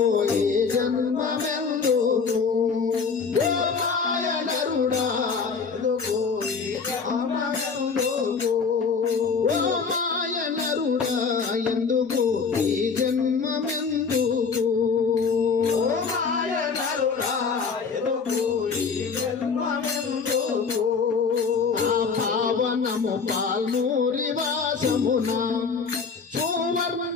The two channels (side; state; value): right; quieter; 5.3 dB